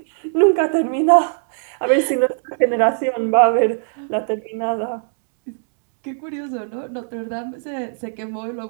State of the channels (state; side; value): silent; left; digital silence